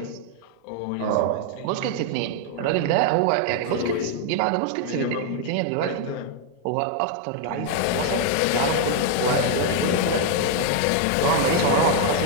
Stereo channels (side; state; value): both; different; correlation 0.00